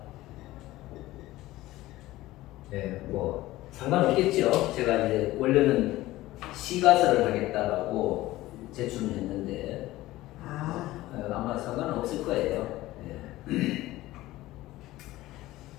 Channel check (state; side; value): quieter; right; 17.1 dB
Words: 네, 뭐 상관없겠죠. 제가 이제 원래는 시가서를 하겠다라고 제출을 했는데 아마 상관은 없을 거예요. 네.